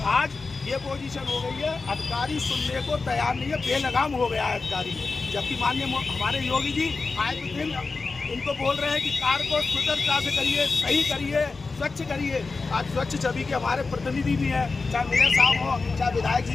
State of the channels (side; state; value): right; quieter; 4.1 dB